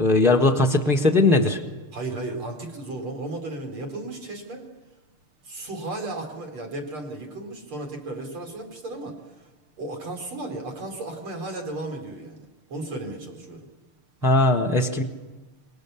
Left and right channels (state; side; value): late; left; 6.6 ms